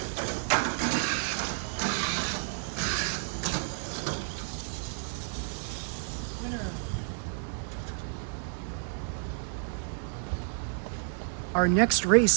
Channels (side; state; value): left; silent; 57 dB below the other